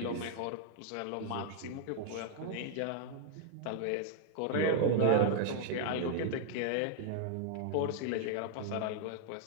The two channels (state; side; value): different; both; correlation 0.00